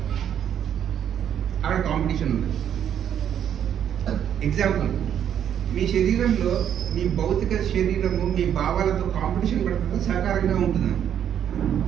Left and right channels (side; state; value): left; quieter; 9.4 dB